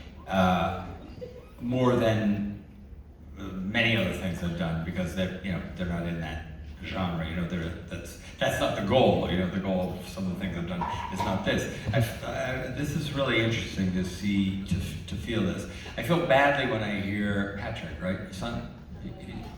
more than many other things I've done, because they're not in that genre. That's not the goal. The goal of some of the things I've done is not this. This is really interesting to see, to feel this. I feel badly when I hear Patrick, right, your son?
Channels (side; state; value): both; identical; correlation 1.00